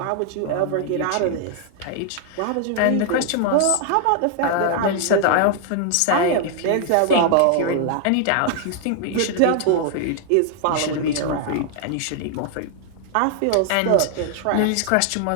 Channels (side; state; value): both; different; correlation 0.00